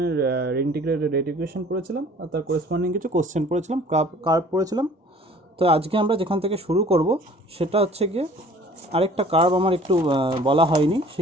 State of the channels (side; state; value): both; normal; correlation 0.50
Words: ইন্টিগ্রেটেড রেট ইকুয়েশন পড়েছিলাম আর তার করেসপন্ডিং কিছু কোশ্চেন পড়েছিলাম, কার্ভ পড়েছিলাম। তো আজকে আমরা যেখান থেকে শুরু করব সেটা হচ্ছে গিয়ে আরেকটা কার্ভ আমার একটু বলা হয়নি,